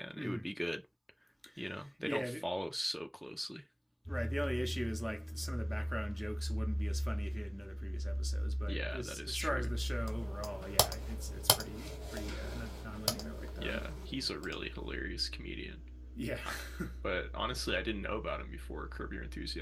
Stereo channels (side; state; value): both; identical; correlation 1.00